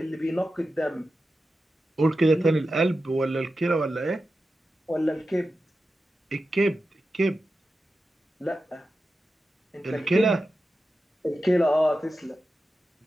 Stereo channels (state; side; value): normal; both; correlation 0.92